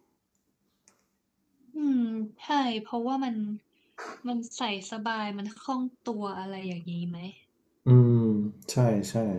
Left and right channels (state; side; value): identical; both; correlation 1.00